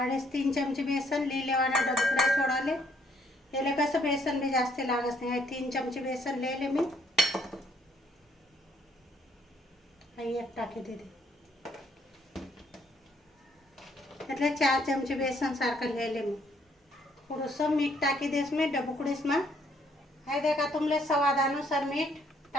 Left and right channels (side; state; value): both; normal; correlation 0.68